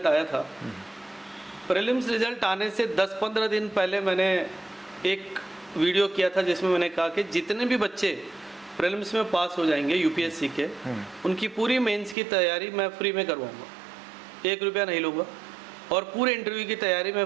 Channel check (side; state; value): left; drops out; at 12.2 s